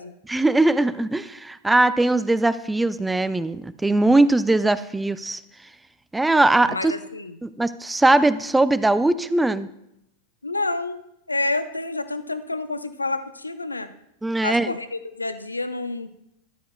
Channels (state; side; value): normal; both; correlation 0.78